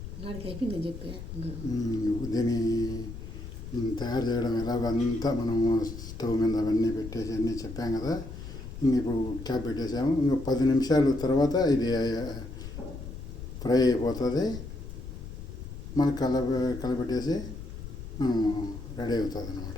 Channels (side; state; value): left; noise; rumble, 10 dB below the sound